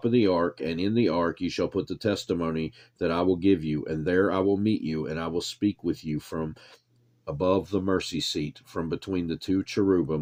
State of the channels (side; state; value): both; identical; correlation 1.00